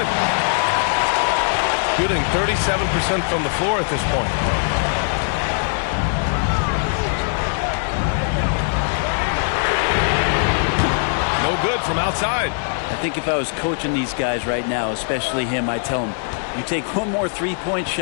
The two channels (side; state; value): right; silent; 65 dB below the other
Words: Shooting 37% from the floor at this point. No good from outside. I think if I was coaching these guys right now, especially him, I'd tell him, you take one more three-point